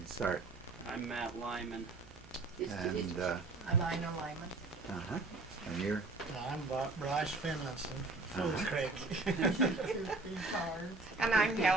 start. I'm Matt Lyman. And I'm Ina Lyman. and you're I'm Bryce Finlinson, Fools Creek. And I'm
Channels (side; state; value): left; quieter; 3.4 dB